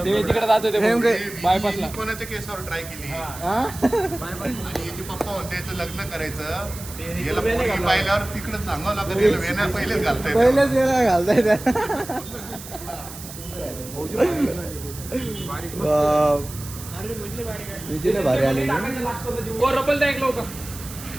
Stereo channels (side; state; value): right; noise; hiss, 13 dB below the sound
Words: ते तिकडे जातो ते बायपासला. कोणाच्या केसावर ट्राय केली आणि याचे पप्पा होते याचं लग्न करायचं. याला पोरगी पाहिल्यावर तिकडे सांगावं लागत. याला वेण्या पहिलेच घालताय. पहिलेच वेळा घालताय त्या. भारी आले